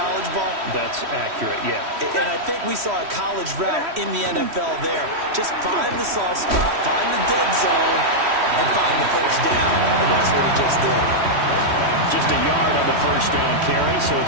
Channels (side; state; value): left; late; 3.1 ms